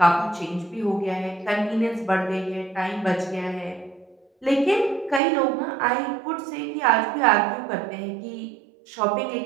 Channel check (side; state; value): left; drops out; at 5.2 s